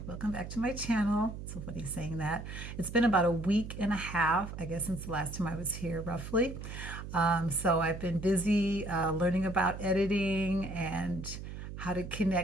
Welcome back to my channel. So funny saying that. It's been about a week and a half, I guess, since the last time I was here, roughly. So I've been busy learning about editing and how to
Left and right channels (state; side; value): noise; right; hum, 9 dB below the sound